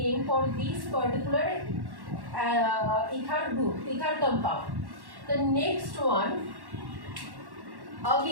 for this particular ether group, ether compound. The next one,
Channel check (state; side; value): late; left; 1.1 ms